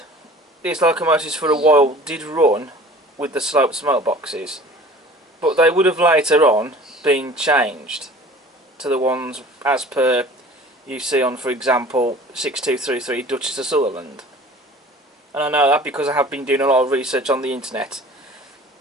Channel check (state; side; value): normal; both; correlation 0.45